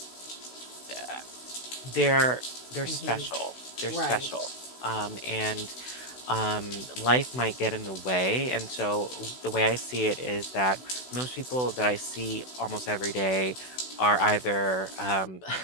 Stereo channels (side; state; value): right; late; 16 ms